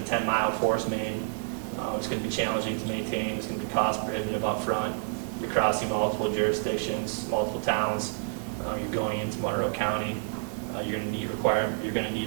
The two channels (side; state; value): left; silent; digital silence